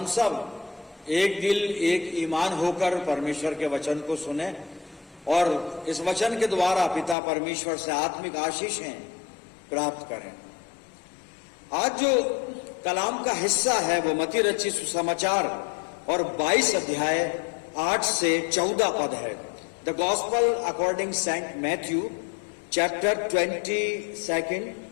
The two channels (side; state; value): right; drops out; at 7.2 s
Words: सब एक दिल एक ईमान होकर परमेश्वर के वचन को सुने और इस वचन के द्वारा पिता परमेश्वर से आत्मिक आशीषें प्राप्त करें। आज जो कलाम का हिस्सा है वो मत्ती रचित सुसमाचार और 22 अध्याय 8 से 14 पद है। The gospel according Saint Matthew chapter 22